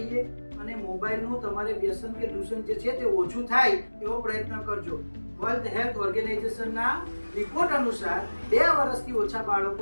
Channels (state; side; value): inverted; both; correlation -1.00